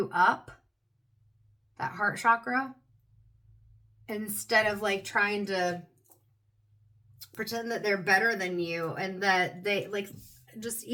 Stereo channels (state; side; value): identical; both; correlation 1.00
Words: up, that heart chakra, instead of like trying to pretend that they're better than you, and that they like, just